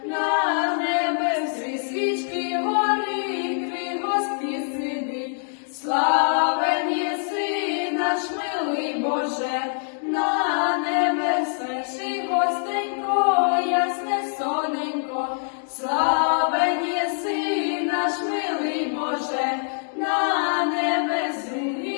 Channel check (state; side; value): silent; right; digital silence